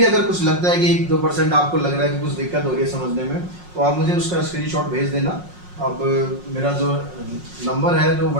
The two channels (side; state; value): left; late; 5.5 ms